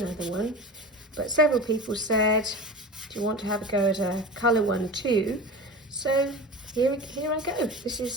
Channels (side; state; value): both; normal; correlation 0.32